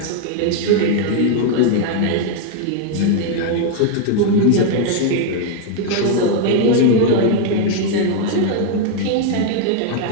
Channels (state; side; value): different; both; correlation 0.00